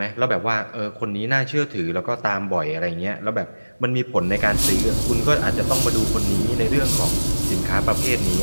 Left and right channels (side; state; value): both; inverted; correlation -1.00